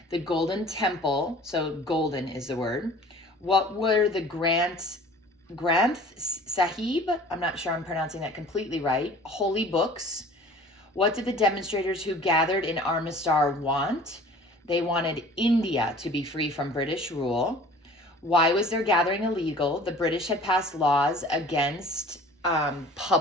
The Golden Temple. So golden is the word. What were the Granth Sahib? I'm not sure I'm pronouncing that completely right. Holy books. What did the demonstrators who gathered in Armistar want? They wanted India to be free from British rule. Why was their gathering illegal? The British had passed laws against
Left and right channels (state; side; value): normal; both; correlation 0.47